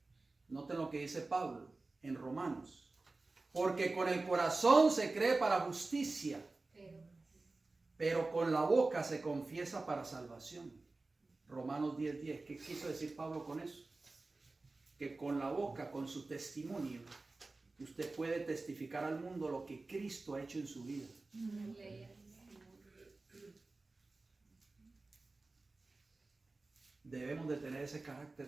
Noten lo que dice Pablo en Romanos. Porque con el corazón se cree para justicia, pero con la boca se confiesa para salvación. Romanos 10:10. ¿Qué quiso decir Pablo con eso? Que con la boca, con su testimonio, usted puede testificar al mundo lo que Cristo ha hecho en su vida. Debemos de tener ese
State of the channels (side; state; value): left; quieter; 3.4 dB